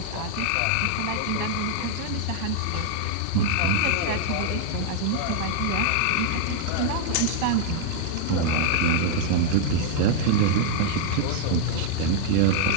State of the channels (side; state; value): both; different; correlation 0.00